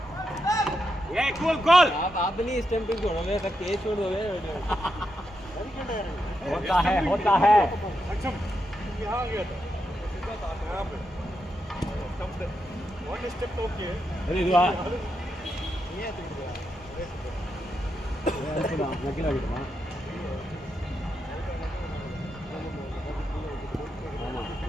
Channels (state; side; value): normal; both; correlation 0.84